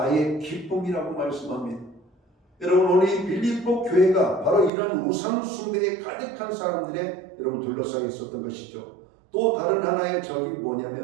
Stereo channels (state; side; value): drops out; left; at 4.7 s